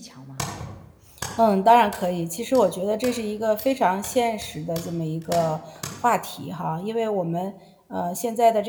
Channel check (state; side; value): identical; both; correlation 1.00